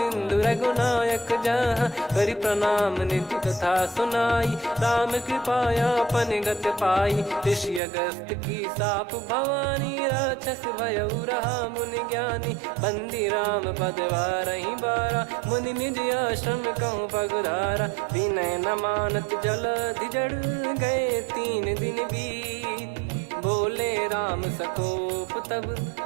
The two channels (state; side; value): drops out; left; at 7.8 s